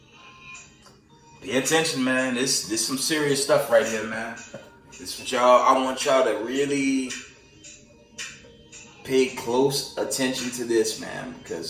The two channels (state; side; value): identical; both; correlation 1.00